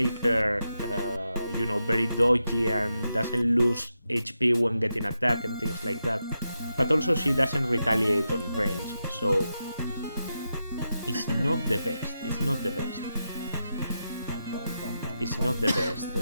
her, very dodgy and doesn't lose HP when getting attacked and things like that. But also she doesn't retaliate on range, so it's not the best.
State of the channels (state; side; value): inverted; both; correlation -0.87